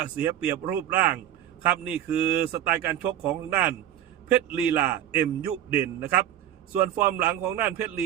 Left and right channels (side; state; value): left; quieter; 11.1 dB